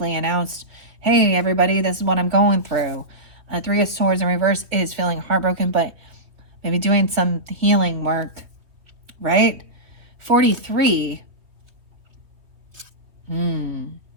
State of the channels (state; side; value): late; left; 3.2 ms